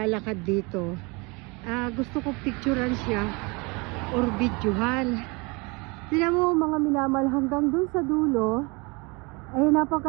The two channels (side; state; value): left; quieter; 28.0 dB